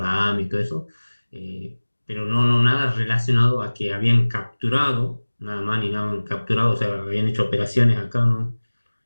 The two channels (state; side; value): inverted; both; correlation -1.00